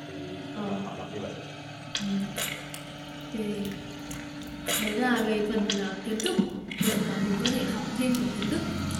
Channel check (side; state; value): both; identical; correlation 1.00